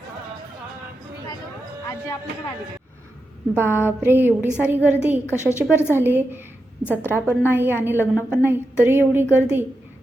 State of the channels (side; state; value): both; normal; correlation 0.88